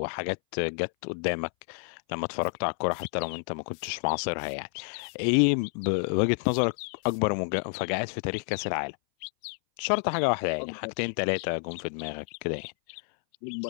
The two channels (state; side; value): silent; right; 58 dB below the other